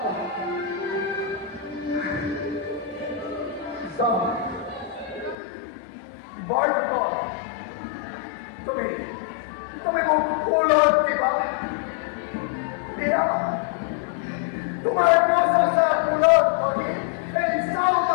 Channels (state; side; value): drops out; right; at 5.4 s